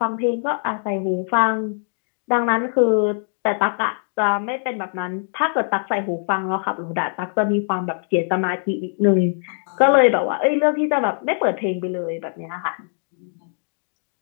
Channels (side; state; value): right; silent; digital silence